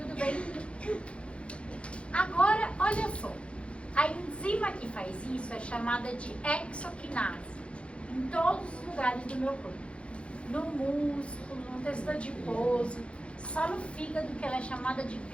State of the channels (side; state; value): right; late; 0.060 ms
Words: bem? Agora, olha só. A enzima que faz isso é chamada de hexoquinase. Em todos os lugares do meu corpo. No músculo, no tecido adiposo, só no fígado que ela é chamada de